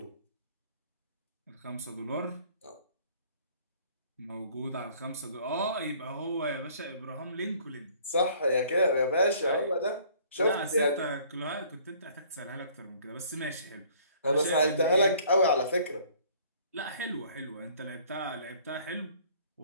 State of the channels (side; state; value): both; inverted; correlation -0.56